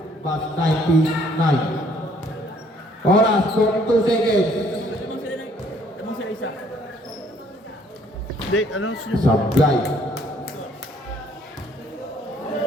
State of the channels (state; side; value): normal; both; correlation 0.62